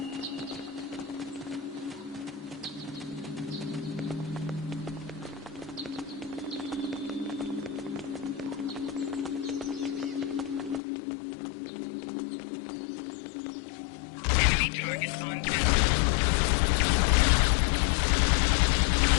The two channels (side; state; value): right; drops out; at 10.8 s